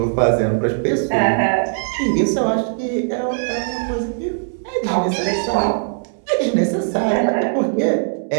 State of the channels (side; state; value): left; silent; 65 dB below the other